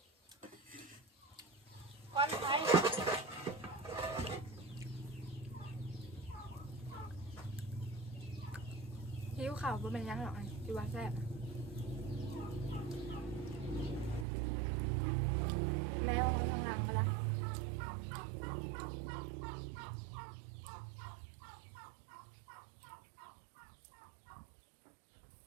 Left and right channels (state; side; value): drops out; left; at 14.2 s